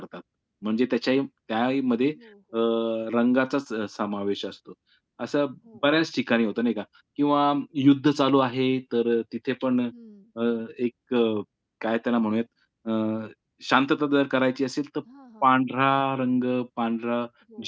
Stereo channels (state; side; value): identical; both; correlation 1.00